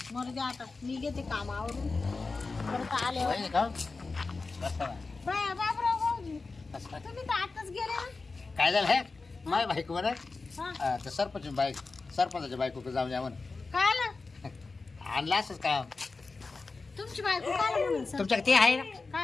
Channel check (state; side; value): quieter; right; 4.0 dB